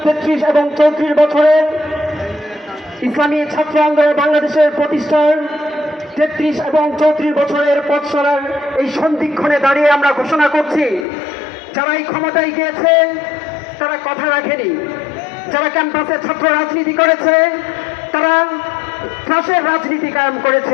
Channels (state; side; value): drops out; right; at 11.1 s